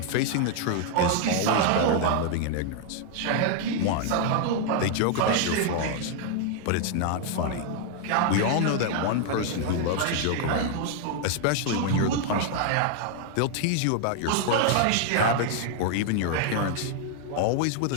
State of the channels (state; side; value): different; both; correlation 0.00